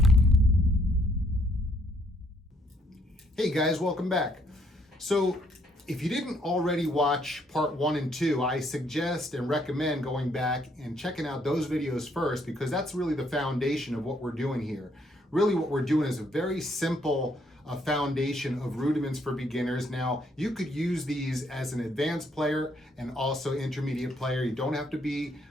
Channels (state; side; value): normal; both; correlation 0.69